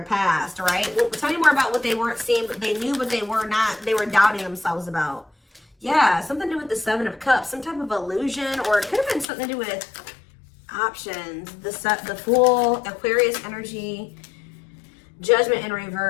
past, right? Well, tell me more about what they weren't seeing, but they knew, but they were not. They were doubting themselves about. Yeah, something to do with the Seven of Cups, some type of illusion, or it could have been something to do with options. The Fool, Aquarius energy, Judgment in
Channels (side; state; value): right; drops out; at 9.2 s